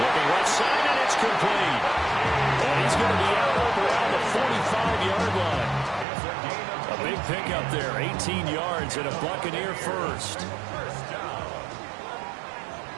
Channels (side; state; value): left; drops out; at 6.1 s